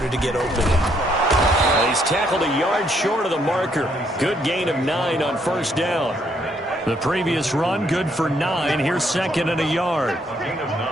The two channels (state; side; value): normal; both; correlation 0.71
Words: to get open. He's tackled a yard short of the marker. Good gain of 9 on 1st down. The previous run, good for 9. Here's 2nd and a yard. Gain of